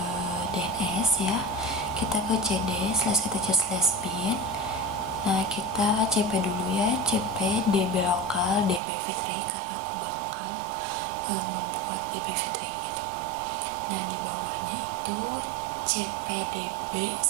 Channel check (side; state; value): left; drops out; at 8.8 s